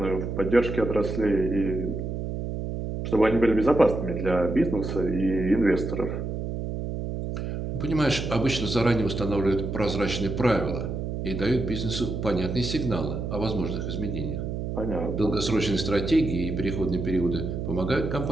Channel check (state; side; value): noise; right; hum, 4 dB below the sound